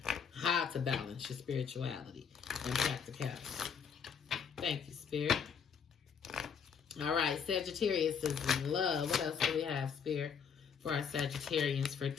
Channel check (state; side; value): quieter; right; 6.9 dB